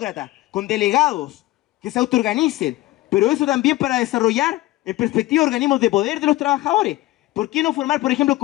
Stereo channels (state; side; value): quieter; right; 17.8 dB